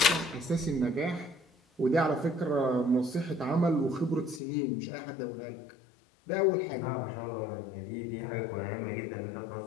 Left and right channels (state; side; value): drops out; right; at 4.4 s